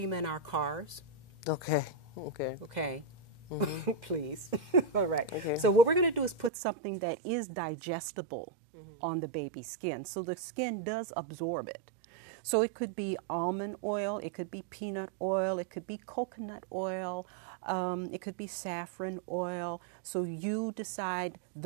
in our cars. Okay. Okay. Okay. Please. All right. Okay. So what we're going to do is put something that is digestible on the baby's skin, so the skin does absorb it. So it could be almond oil, it could be peanut oil, it could be coconut oil, it could be saffron oil. So you decide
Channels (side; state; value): left; drops out; at 6.5 s